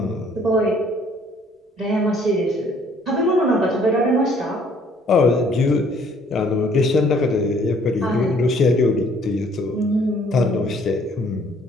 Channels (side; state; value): both; normal; correlation 0.60